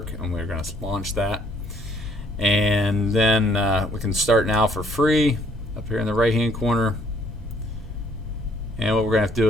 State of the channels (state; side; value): normal; both; correlation 0.64